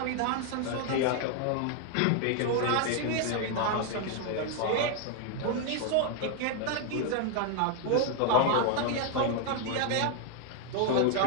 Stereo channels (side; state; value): both; different; correlation 0.00